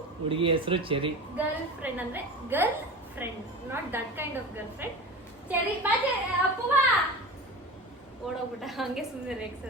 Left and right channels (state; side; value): normal; both; correlation 0.31